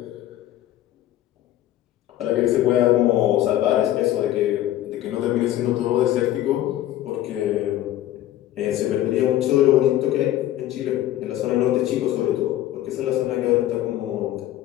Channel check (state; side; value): quieter; right; 13.4 dB